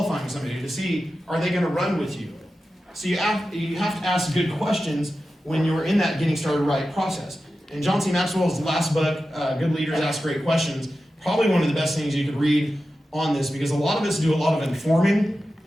somebody to see, are they going to run with you? So you have to ask good questions when you're in that getting started right process. And John C. Maxwell's last book, Good Leaders Ask Great Questions, probably one of the best things you could read on this, because a lot of us do a lot of informing.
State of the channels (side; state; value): both; normal; correlation 0.92